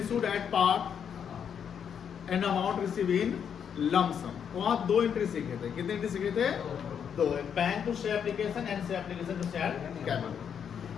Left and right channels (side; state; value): right; quieter; 7.8 dB